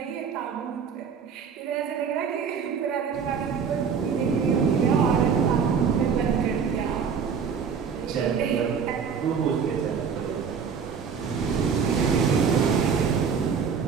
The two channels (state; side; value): quieter; left; 6.5 dB